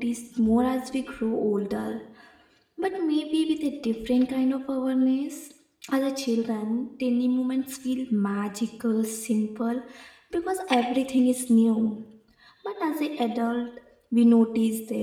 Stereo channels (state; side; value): identical; both; correlation 1.00